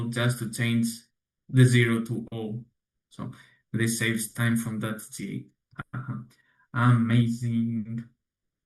just to change the 0 to O. So this saves time from that J. Amazing.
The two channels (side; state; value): both; identical; correlation 1.00